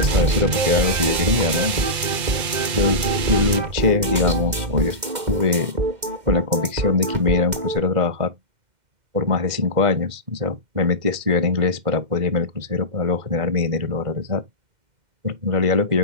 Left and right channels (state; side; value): late; left; 2.1 ms